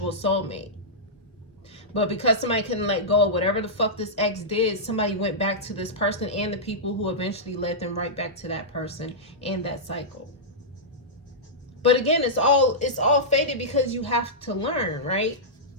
soulmate. But because somebody couldn't let go of whatever the fuck this ex did, somebody went back to this person and the people who eventually led them right back to that person and that cycle. But again, it's all fated because you have to learn, right?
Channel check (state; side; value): normal; both; correlation -0.12